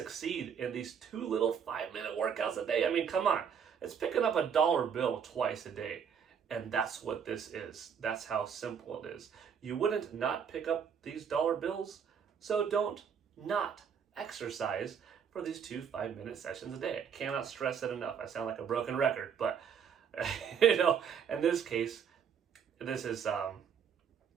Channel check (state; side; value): quieter; left; 7.4 dB